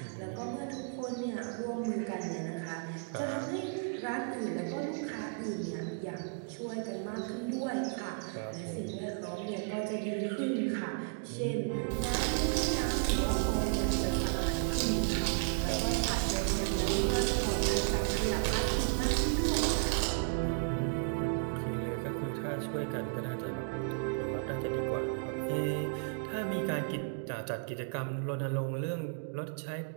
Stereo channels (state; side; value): quieter; left; 36.0 dB